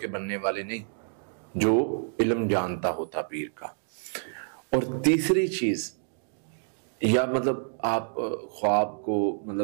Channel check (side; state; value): left; silent; digital silence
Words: بننے والے نہیں، جو علم جانتا ہو تعبیر کا۔ اور تیسری چیز، یا آپ خواب کو